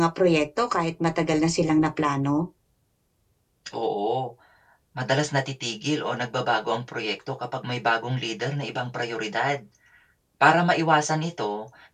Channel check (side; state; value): both; identical; correlation 1.00